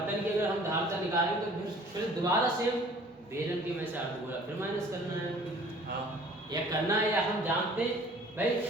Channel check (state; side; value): normal; both; correlation 0.51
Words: की अगर हम धारता निकालेंगे तो फिर दोबारा से बेलन के में से अर्धगोला फिर माइनस करना है, या करना है, या हम जानते भाई